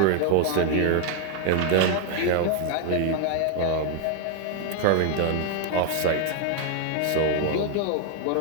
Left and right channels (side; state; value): both; different; correlation 0.00